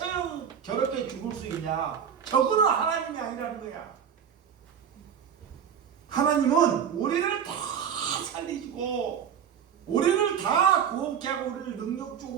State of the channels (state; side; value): quieter; left; 8.0 dB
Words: 저렇게 죽을 수 있냐? 저거는 하나님이 아니라는 거야. 하나님은 우리를 다 살리시고 우리를 다 구원케 하고 우리를